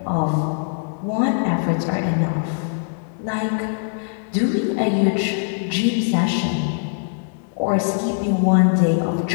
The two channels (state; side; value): silent; right; 65 dB below the other